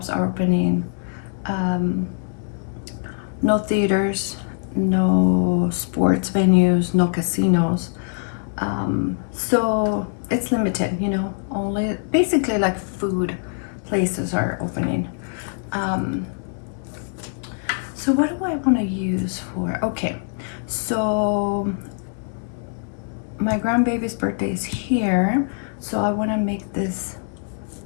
are opening, no theaters, no sports venues, no casinos. So it's limited, you know, only basically like food places are opening. So what do I want to use for? Okay, so my grandbaby's birthday is here, so I want to make this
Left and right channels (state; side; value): silent; right; 60 dB below the other